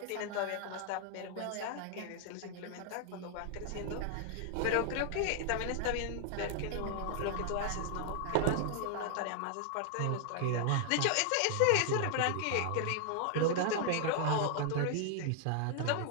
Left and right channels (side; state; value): both; different; correlation 0.00